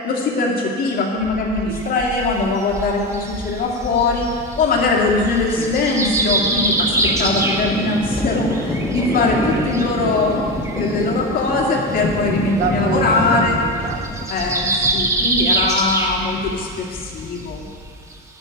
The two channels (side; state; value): both; normal; correlation 0.16